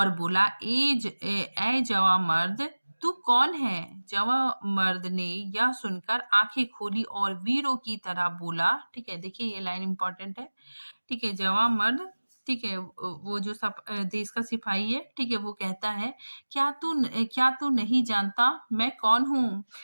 बोला, ए जवा मर्द, तू कौन है? जवा मर्द ने यह सुनकर आंखें खोली और वीरों की तरह बोला। ठीक है, देखिए ये लाइन इंपॉर्टेंट है। ठीक है, जवा मर्द, ठीक है, वो जो देश का सिपाही है, ठीक है, वो कहता है, क्या तू नहीं जानता मैं कौन हूँ?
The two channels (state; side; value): inverted; both; correlation -1.00